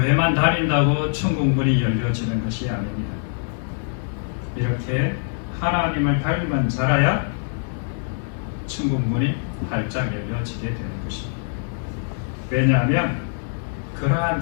다닌다고 천국문이 열려지는 것이 아닙니다. 이렇게 하나님을 닮은 자라야 천국문이 활짝 열려지게 되는 것입니다. 왜냐하면 그러한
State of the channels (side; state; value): right; silent; digital silence